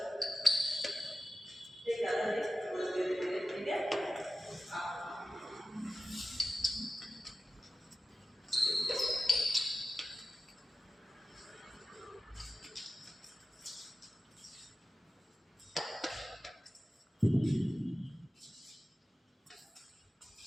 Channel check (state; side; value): normal; both; correlation 0.93